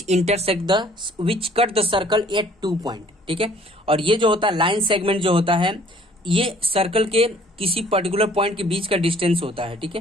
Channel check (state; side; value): normal; both; correlation 0.57